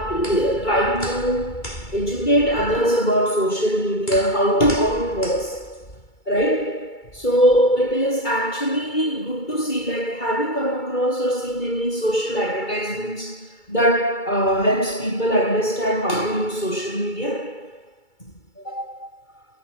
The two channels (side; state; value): right; late; 2.3 ms